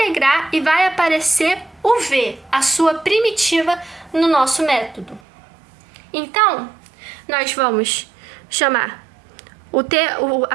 e vai aparecer o v, a sua primitiva, no nosso método. Então, nós vamos chamar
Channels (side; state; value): left; drops out; at 5.2 s